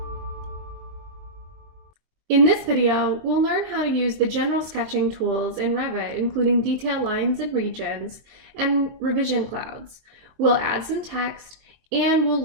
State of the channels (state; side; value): late; left; 22 ms